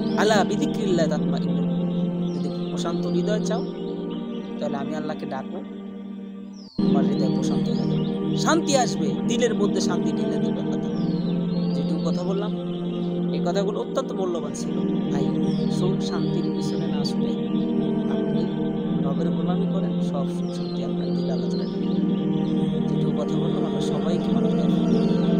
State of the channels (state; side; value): identical; both; correlation 1.00